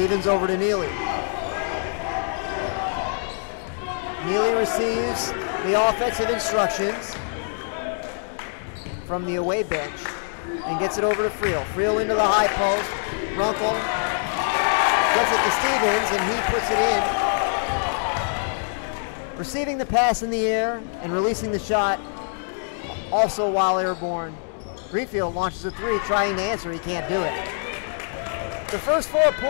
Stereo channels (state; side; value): silent; right; digital silence